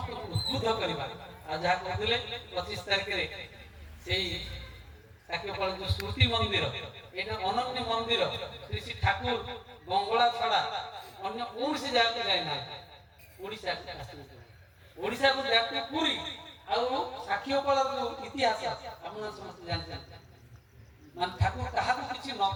ଉଦ୍ବୁଦ୍ଧ କରିବା। ଆଉ ଯାହା କହୁଥିଲେ 25 ତାରିଖରେ ସେଇ ସାକ୍ଷୀଗୋପାଳ ଯୋଉ ସ୍ମୃତି ମନ୍ଦିର ଏଇଟା ଅନନ୍ୟ ମନ୍ଦିର ଶ୍ରୀ ଠାକୁର ବଙ୍ଗଳା ଛଡା ଅନ୍ୟ କୌଣସି ଜାଗାକୁ ଯାଇନାହାନ୍ତି ଓଡ଼ିଶାକୁ ଯାହାକୁ ପୁରୀ ଆଉ ସାକ୍ଷୀଗୋପାଳର ଯୋଉ ଇତିହାସ ଆପଣ ସମସ୍ତେ ଜାଣିଛନ୍ତି ମାନେ ଠାକୁର କାହାକୁ କିଛି ନ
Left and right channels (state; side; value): identical; both; correlation 1.00